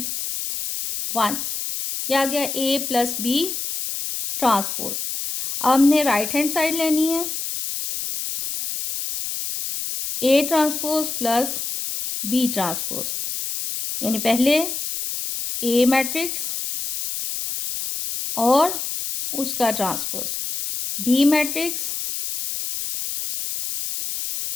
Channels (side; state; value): left; noise; hiss, 4 dB below the sound